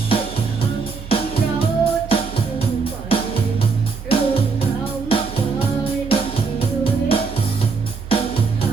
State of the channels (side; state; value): left; quieter; 4.8 dB